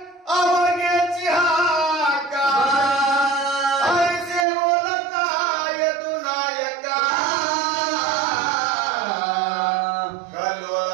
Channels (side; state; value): left; drops out; at 4.5 s